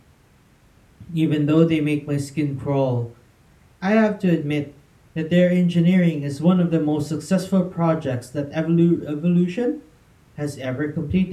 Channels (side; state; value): both; identical; correlation 1.00